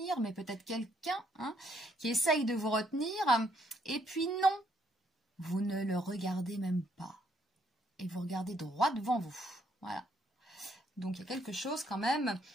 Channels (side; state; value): both; normal; correlation 0.70